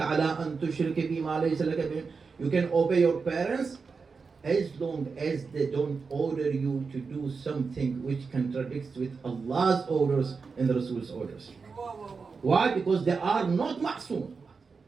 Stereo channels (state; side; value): quieter; left; 4.9 dB